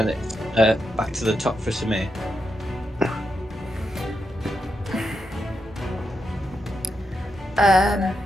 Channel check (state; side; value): normal; both; correlation 0.85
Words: back to the top for Samir.